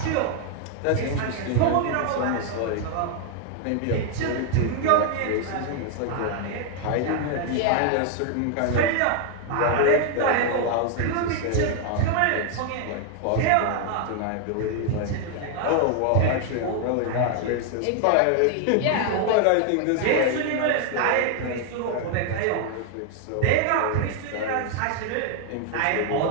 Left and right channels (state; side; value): different; both; correlation 0.00